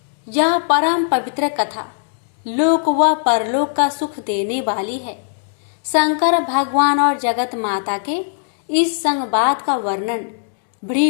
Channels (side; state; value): right; silent; digital silence